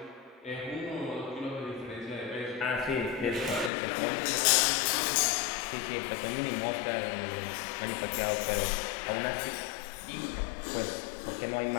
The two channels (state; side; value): drops out; right; at 3.7 s